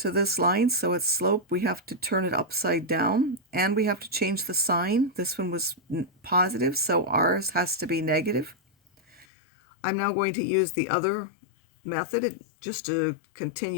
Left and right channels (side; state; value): right; drops out; at 9.2 s